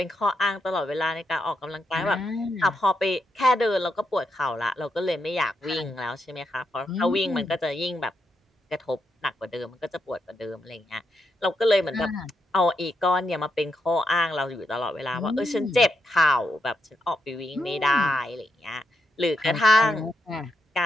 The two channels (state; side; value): normal; both; correlation 0.82